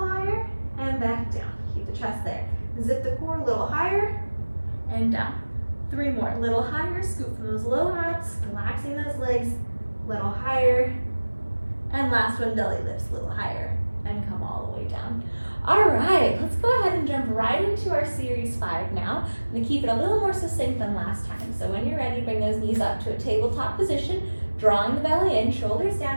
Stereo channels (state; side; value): inverted; both; correlation -1.00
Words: and back down. Keep the chest there. Zip the core a little higher and down. 3 more, a little higher, scoop from those low abs, relaxing those legs, a little higher. And last one, belly lifts a little higher and come all the way down. All right, let's go ahead and jump right into our series 5 now. I'm gonna keep it a little more succinct than last time. So when you're ready, bring those knees up to a tabletop position, drawing the belly in, shoulders